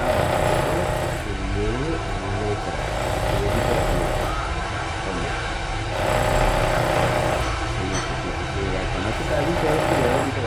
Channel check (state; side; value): identical; both; correlation 1.00